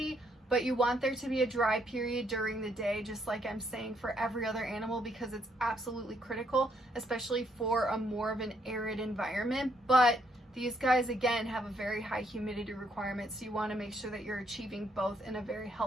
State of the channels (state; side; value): normal; both; correlation 0.72